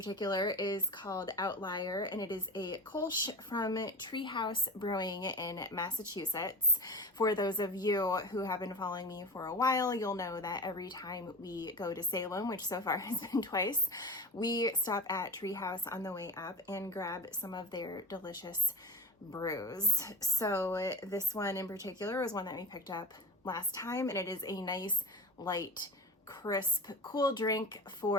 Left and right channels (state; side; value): normal; both; correlation 0.26